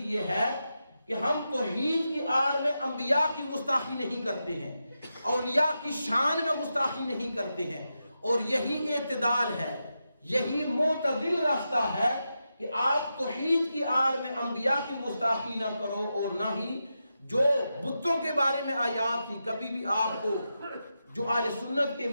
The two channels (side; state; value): both; inverted; correlation -0.88